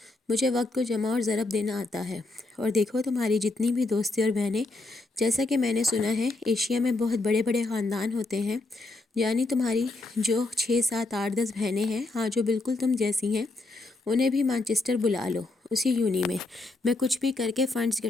مجھے وقت کو جمع اور ضرب دینا آتا ہے۔ اور دیکھو تمہاری جتنی بھی دوستی اور بہنیں، جیسا کہ میں نے سنا ہے ایشیا میں بہت بڑے بڑے خاندان ہوتے ہیں، یعنی تمہاری جو 6 7 8 10 بہنیں ہیں، ہاں جو بالکل تم جیسی ہیں، انہیں بھی مانچسٹر بلا لو، اسی یونی میں کچھ بھی کر کے فنڈز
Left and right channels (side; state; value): right; quieter; 3.0 dB